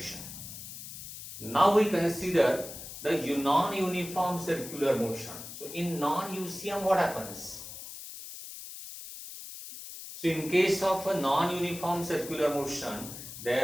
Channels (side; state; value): left; noise; hiss, 11 dB below the sound